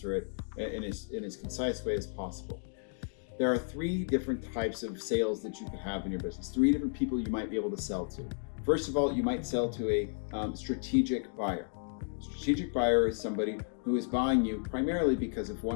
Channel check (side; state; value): right; silent; 56 dB below the other